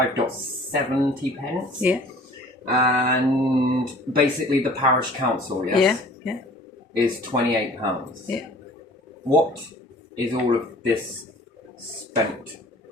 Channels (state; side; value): normal; both; correlation 0.49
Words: pence. Yeah. And basically the parish council, yes? Yeah. Is £28. Yeah. What is all of this spent